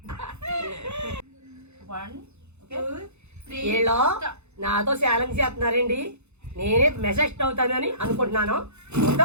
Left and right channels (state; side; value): late; left; 0.81 ms